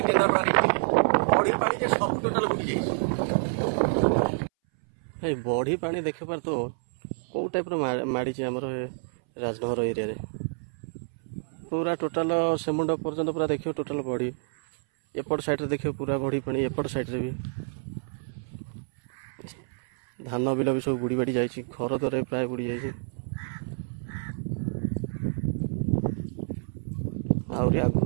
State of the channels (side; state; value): left; silent; 59 dB below the other